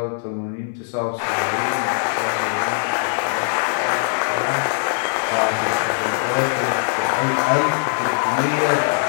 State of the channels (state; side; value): silent; right; 58 dB below the other